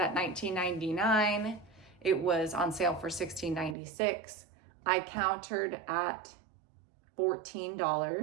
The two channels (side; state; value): left; drops out; at 3.8 s